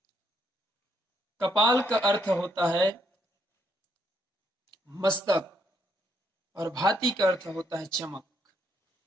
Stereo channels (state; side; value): normal; both; correlation 0.73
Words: कपाल का अर्थ होता है मस्तक और भाति का अर्थ होता है चमक।